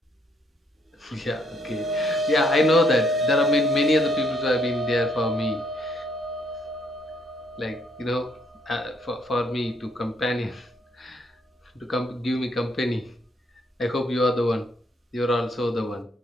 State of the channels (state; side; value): normal; both; correlation 0.70